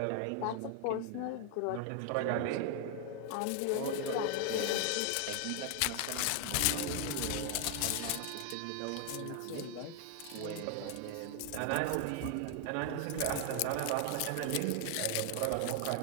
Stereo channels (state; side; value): different; both; correlation 0.00